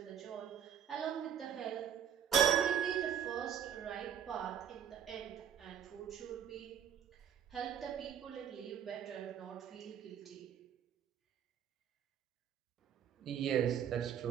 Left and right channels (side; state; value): left; quieter; 8.9 dB